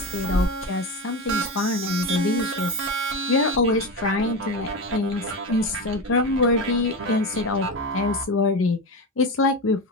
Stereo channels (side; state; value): both; normal; correlation 0.20